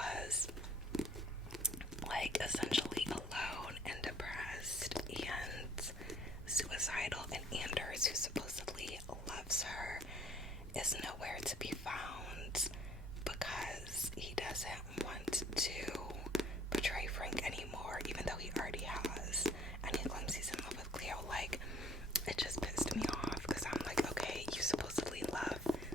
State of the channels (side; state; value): both; normal; correlation 0.59